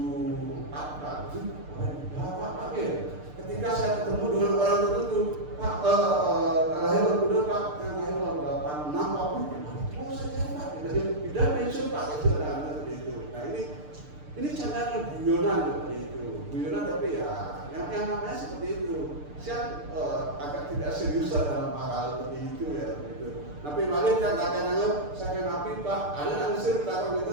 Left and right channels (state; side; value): late; left; 6.7 ms